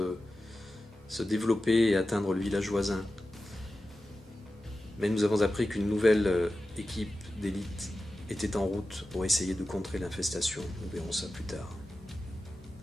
développer et atteindre le village voisin. Mais nous avons appris qu'une nouvelle équipe d'élite était en route pour essayer de contrer l'infestation. Nous verrons ça plus tard.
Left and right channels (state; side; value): normal; both; correlation 0.93